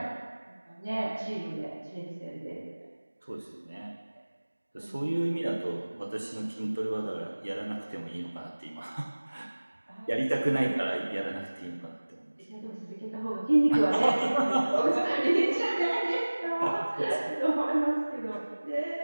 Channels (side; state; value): both; inverted; correlation -1.00